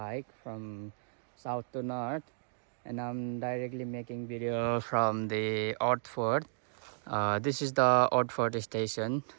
from south to north, and I'm directly making video from the Odd Fort. This is the Odd Fort station,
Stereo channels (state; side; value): silent; left; digital silence